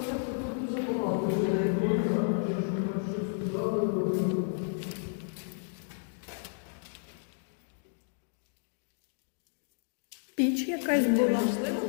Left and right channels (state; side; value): silent; right; digital silence